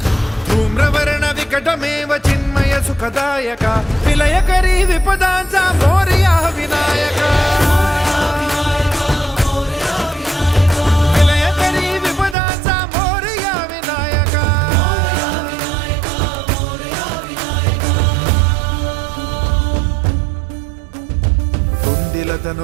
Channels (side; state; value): left; drops out; at 12.4 s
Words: धूम्रवर्ण विकटमेव चिन्मय सुखदायका विलयकरी विपदांचा मोरया विनायका विलयकरी विपदांचा मोरया विनायका